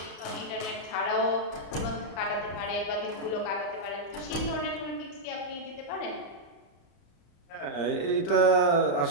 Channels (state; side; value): late; right; 35 ms